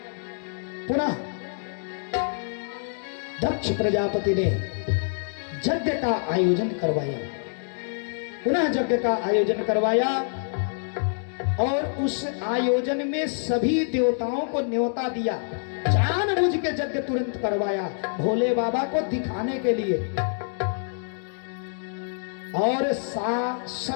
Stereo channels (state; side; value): silent; right; digital silence